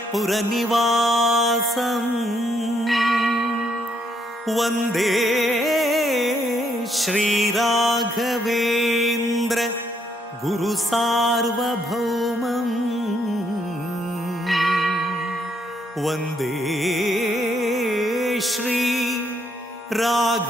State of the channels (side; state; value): both; normal; correlation 0.73